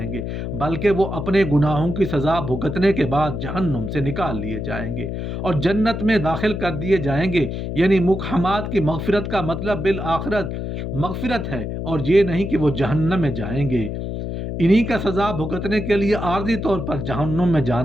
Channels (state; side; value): noise; left; hum, 4 dB below the sound